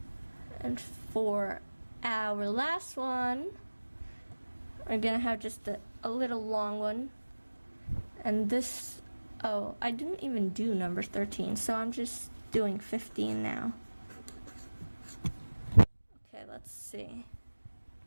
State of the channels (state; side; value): inverted; both; correlation -1.00